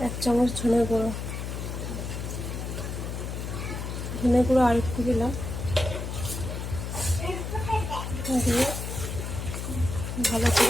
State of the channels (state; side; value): noise; left; hum, 5 dB below the sound